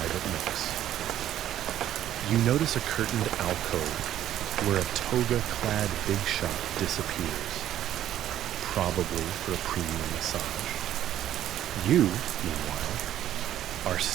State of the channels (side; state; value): left; quieter; 11.9 dB